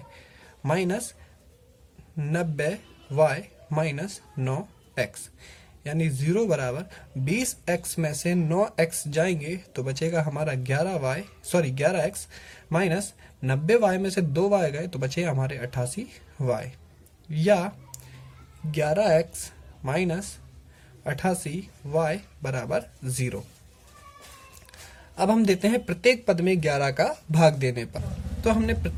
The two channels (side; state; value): both; identical; correlation 1.00